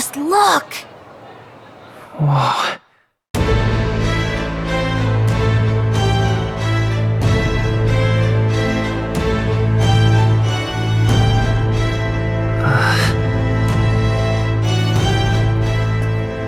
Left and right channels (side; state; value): both; identical; correlation 1.00